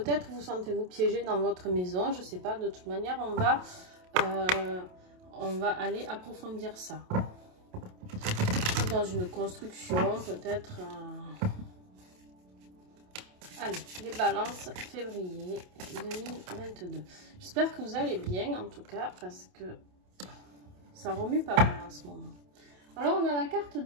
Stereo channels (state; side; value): late; left; 28 ms